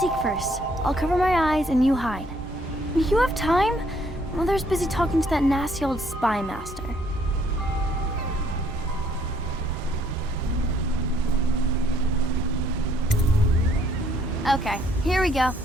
first. I'll cover my eyes and you hide. You have time? Mother's busy talking to that nasty old spy master. Okay, here we go.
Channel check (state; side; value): normal; both; correlation 0.66